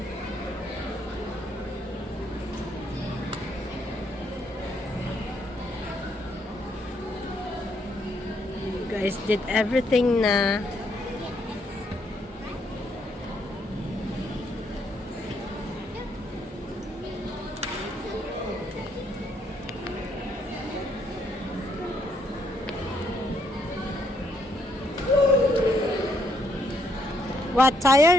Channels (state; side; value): normal; both; correlation 0.72